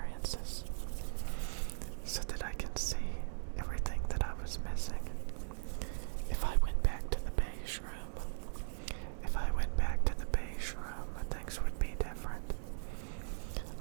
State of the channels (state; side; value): silent; left; 52 dB below the other